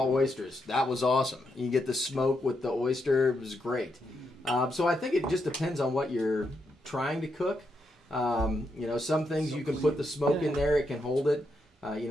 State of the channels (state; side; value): normal; both; correlation 0.81